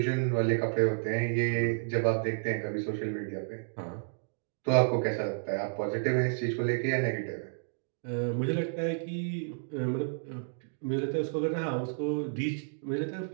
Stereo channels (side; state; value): left; silent; digital silence